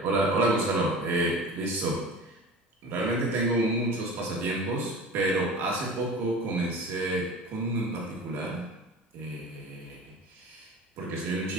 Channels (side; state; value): both; normal; correlation 0.36